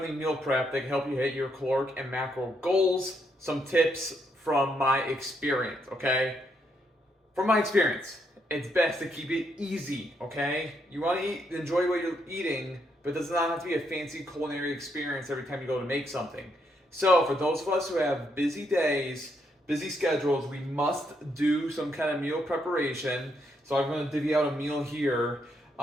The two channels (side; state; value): both; normal; correlation 0.76